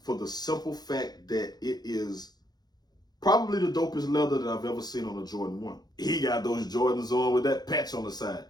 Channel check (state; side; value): late; right; 0.19 ms